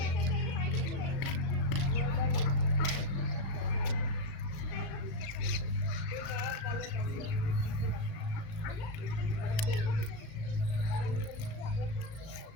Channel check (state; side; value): late; right; 36 ms